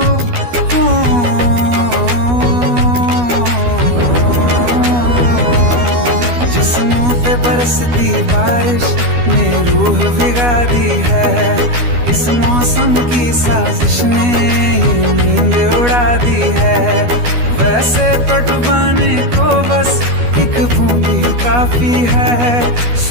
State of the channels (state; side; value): late; left; 12 ms